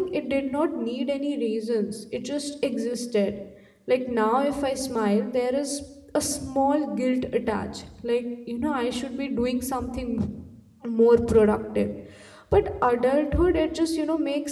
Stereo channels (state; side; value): identical; both; correlation 1.00